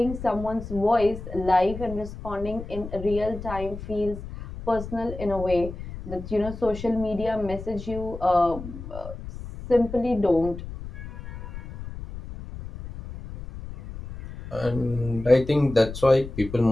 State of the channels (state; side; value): noise; left; rumble, 11 dB below the sound